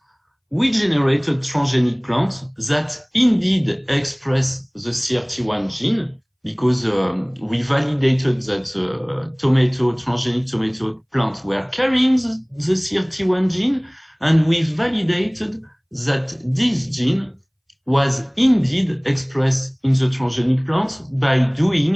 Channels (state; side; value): identical; both; correlation 1.00